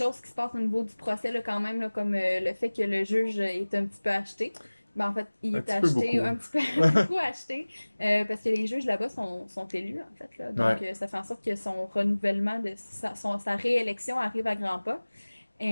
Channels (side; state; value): both; inverted; correlation -1.00